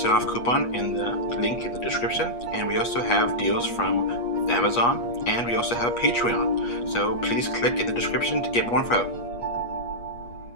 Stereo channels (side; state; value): right; late; 8.4 ms